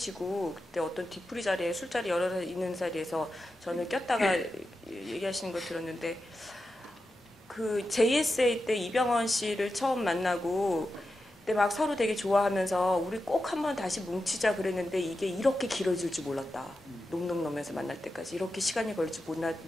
그때 어떤 뒤풀이 자리에 술자리 여러 사 있는 자리에서 저는 꼈다가 얘기하시는 거 들었는데 그 JSA 때 이병헌 씨를 처음 만나고 그때 막 서로 되게 좋아하면서 우리 꼭 한번 다시 뭉치자 그랬는데 이게 이렇게 길어질 줄 몰랐다. 놈놈놈에서 만날 때까지 이렇게 시간이 걸릴 줄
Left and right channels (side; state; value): both; normal; correlation 0.90